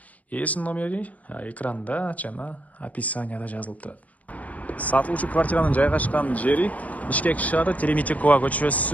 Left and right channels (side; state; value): right; late; 0.072 ms